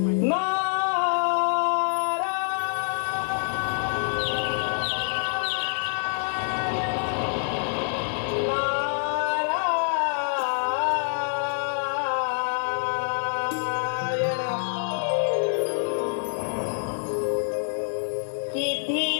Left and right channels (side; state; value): right; silent; 61 dB below the other